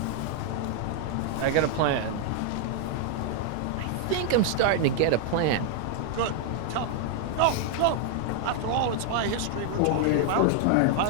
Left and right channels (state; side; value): different; both; correlation 0.00